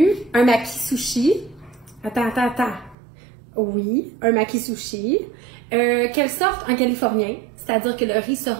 un maki sushi. Attends. Oui, un maki sushi. Quelle sorte? Un californien, c'est-à-dire que le riz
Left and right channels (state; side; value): drops out; left; at 3.0 s